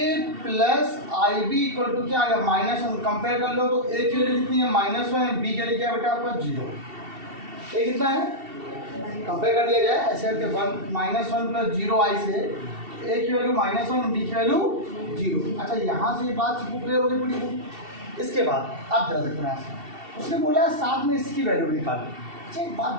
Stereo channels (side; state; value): left; late; 2.7 ms